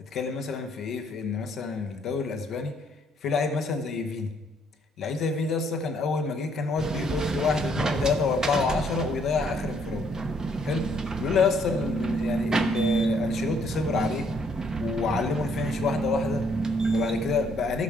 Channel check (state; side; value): normal; both; correlation 0.67